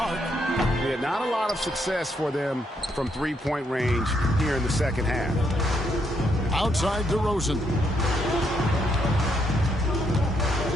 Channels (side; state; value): both; normal; correlation 0.76